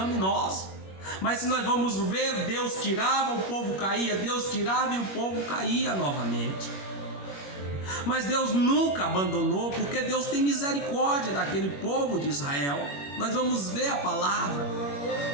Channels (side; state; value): right; late; 21 ms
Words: Mas se nós vamos ver, Deus tirava, o povo caía, Deus tirava e o povo caía novamente. Mas Deus nunca abandonou, porque Deus tem misericórdia daquele povo de Israel. Nós vamos ver a palavra.